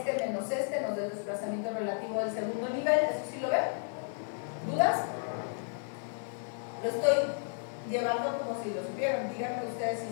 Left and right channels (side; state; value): right; silent; 56 dB below the other